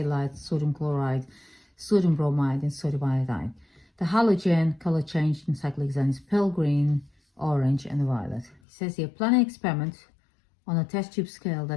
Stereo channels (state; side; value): drops out; right; at 8.6 s